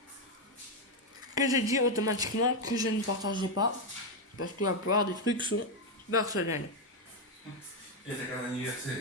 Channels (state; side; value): normal; both; correlation 0.04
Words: Que j'ai dit automatiquement que je ne partageais pas. Parce que la plupart des trucs sont personnels. Et t'as qu'un